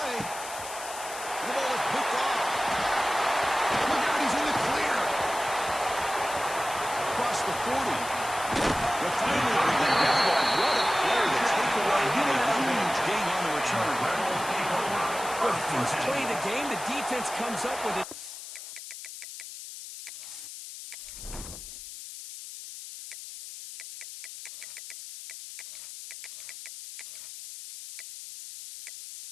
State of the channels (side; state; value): left; noise; hiss, 11 dB below the sound